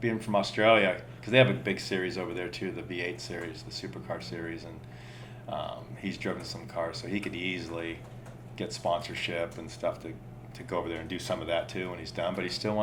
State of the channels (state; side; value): identical; both; correlation 1.00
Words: being from Australia, because they have a big series over there too, the V8 series, the Supercar series, and he's driven some cars, so he could easily get sponsorship and stuff to go over there and do some of that too when he's done. But he still